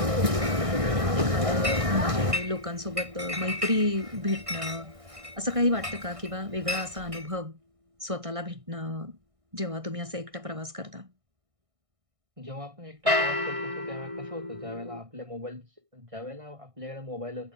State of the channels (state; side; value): late; left; 1.6 ms